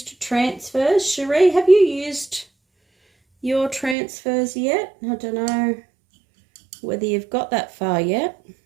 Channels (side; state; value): left; drops out; at 4.0 s